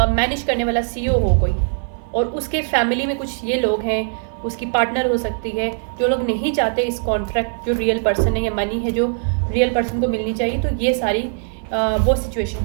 मैनेज करने वाला CEO हो कोई, और उसके फैमिली में कुछ ये लोग हैं, उसकी पार्टनर हो सकती है, जो लोग नहीं चाहते इस कॉन्ट्रैक्ट जो रियल पर्सन है या मनी है जो रियल पर्सन को मिलनी चाहिए। तो ये सारी वो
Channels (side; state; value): left; silent; digital silence